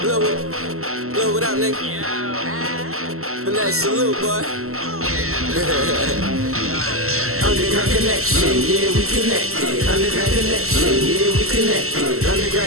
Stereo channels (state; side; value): late; left; 0.63 ms